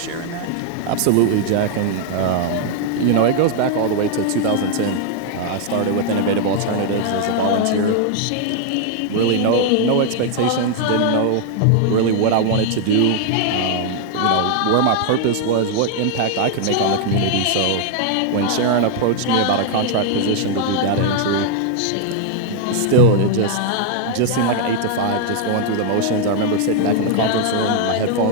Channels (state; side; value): different; both; correlation 0.00